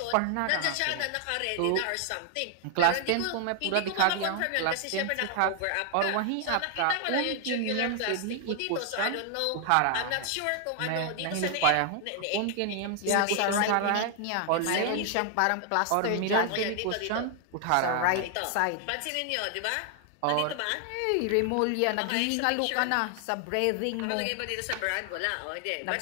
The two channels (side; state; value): both; different; correlation 0.00